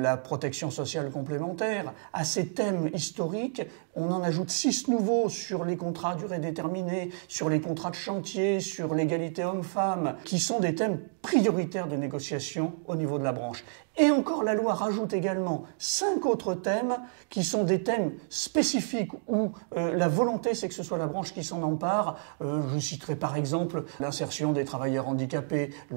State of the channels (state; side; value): silent; left; digital silence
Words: protection sociale complémentaire. À ces thèmes historiques, on en ajoute 6 nouveaux sur les contrats à durée déterminée, sur les contrats de chantier, sur l'égalité homme-femme, qui sont des thèmes prioritaires de négociation au niveau de la branche. Et encore, la loi rajoute également 5 autres thèmes qui sont des thèmes spécifiques où la volonté, c'est que ce soit la branche qui s'en empare. Je citerai par exemple l'insertion des travailleurs handicapés,